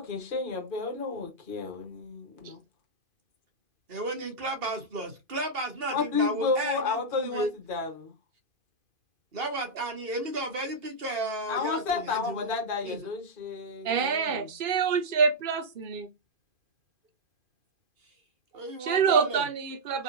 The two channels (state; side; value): late; left; 2.5 ms